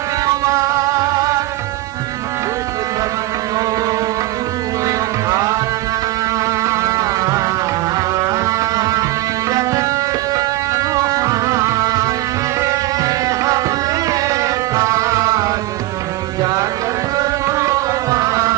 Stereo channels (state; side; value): quieter; left; 17.3 dB